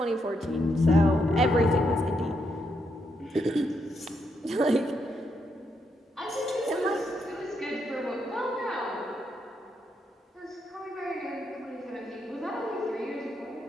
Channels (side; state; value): both; normal; correlation 0.79